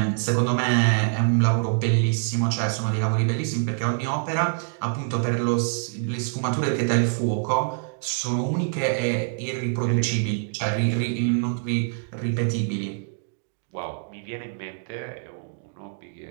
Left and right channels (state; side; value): silent; left; digital silence